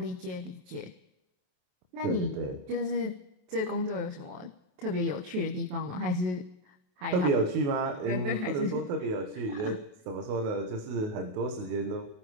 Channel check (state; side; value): late; left; 27 ms